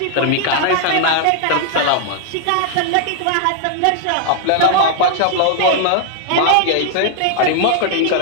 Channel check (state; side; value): different; both; correlation 0.00